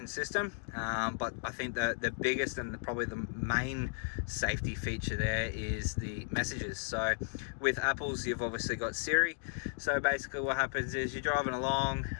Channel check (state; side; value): silent; right; digital silence